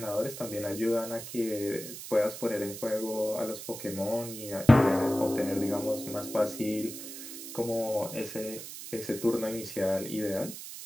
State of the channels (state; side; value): noise; right; hiss, 10 dB below the sound